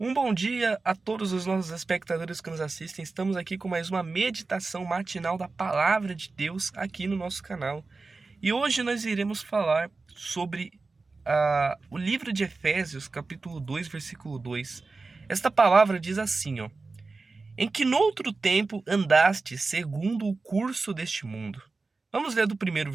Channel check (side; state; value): left; quieter; 3.9 dB